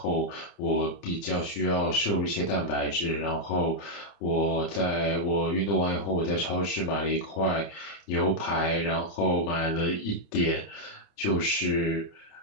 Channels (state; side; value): late; right; 30 ms